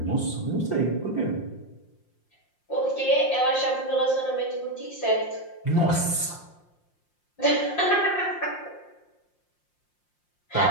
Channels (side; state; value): right; late; 5.7 ms